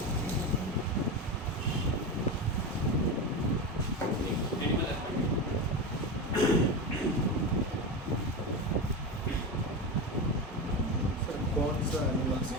एनिमल सर कौन सा एनिमल से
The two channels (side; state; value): both; normal; correlation 0.19